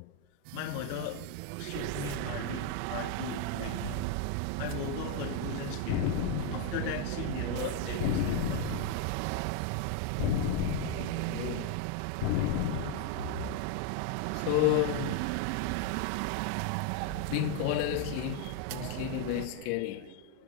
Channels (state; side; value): different; both; correlation 0.01